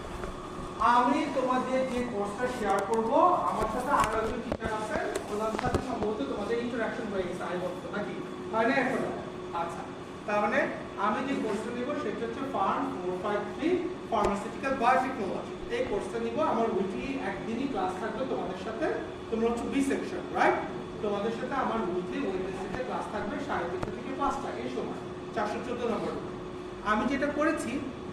আমি তোমাদের যে কোর্সটা শেয়ার করব, আমার সাথে আরো একজন টিচার আছেন, ওনার সাথে সম্ভবত তোমাদের ইন্টারঅ্যাকশন হয়ে গেছে আই বলতো নাকি হয় না এখন? আচ্ছা, তার মানে আমি যে কোর্সটা নিব সেটা হচ্ছে ফার্ম 453 ফার্মাসিউটিক্যাল বায়োটেকনোলজি। এই কোর্সটা নিব, আমার উইকলি একদিনই ক্লাস থাকবে তোমাদের সাথে। তোমরা হচ্ছে বি সেকশন, রাইট? তোমাদের সাথে আমার উইকলি ওয়েডনেসডে ক্লাস থাকবে 3:30 থেকে 5টা এই সময়, 414 নম্বর। আমি যেটা করেছি,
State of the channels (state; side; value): identical; both; correlation 1.00